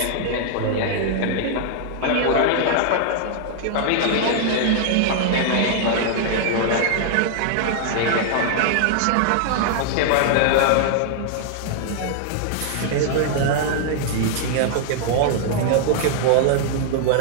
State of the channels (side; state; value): both; different; correlation -0.01